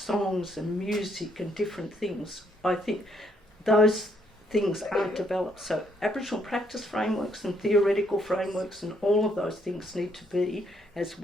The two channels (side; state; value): both; normal; correlation 0.71